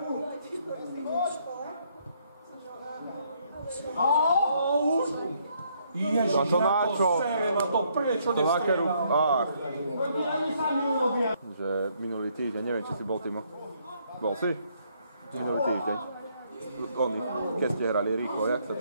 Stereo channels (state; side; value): inverted; both; correlation -0.70